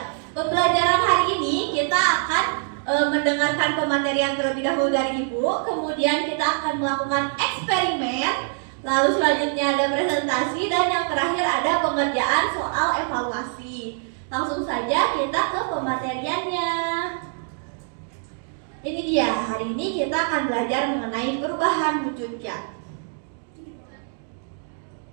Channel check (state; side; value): silent; left; 63 dB below the other